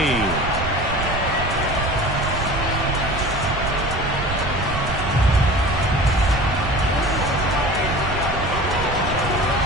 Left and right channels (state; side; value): noise; right; rumble, 6 dB below the sound